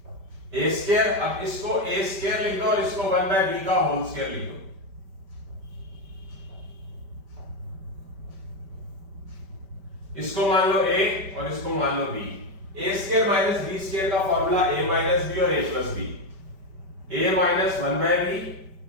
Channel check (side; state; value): left; late; 5.1 ms